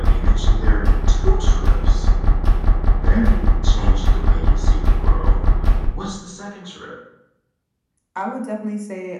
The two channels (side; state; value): both; identical; correlation 1.00